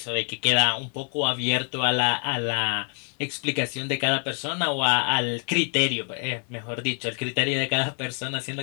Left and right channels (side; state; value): right; quieter; 40.0 dB